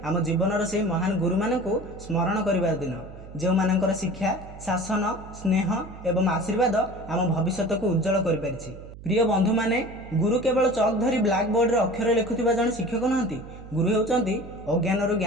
आम जीवन से महान गुरु मानू स्मरण कर दिन जो मानकर शिक्षा शासन स्नेह एवं आशीर्वाद आम भविष्य को उज्जवल कर। प्रिय बंधु माने, गुरु केवल चक धरी ब्लैक बोर्ड रे अक्षर लिखुवा जन शिक्षक नहंती। गुरु होउचंती अज्ञान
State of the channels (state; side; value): noise; right; hum, 15 dB below the sound